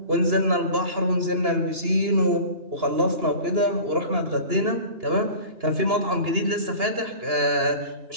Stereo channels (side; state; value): left; late; 2.9 ms